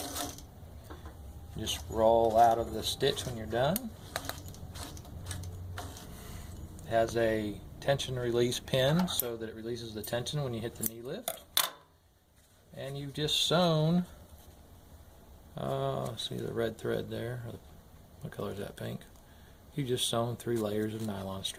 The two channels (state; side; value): identical; both; correlation 1.00